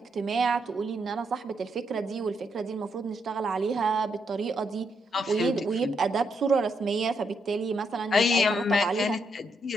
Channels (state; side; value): normal; both; correlation 0.78